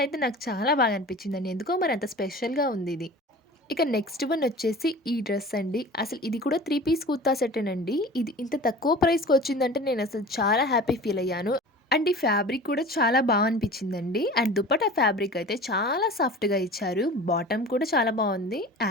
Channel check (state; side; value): normal; both; correlation 0.39